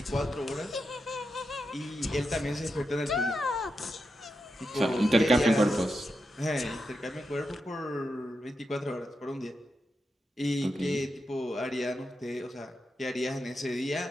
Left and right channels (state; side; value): normal; both; correlation 0.87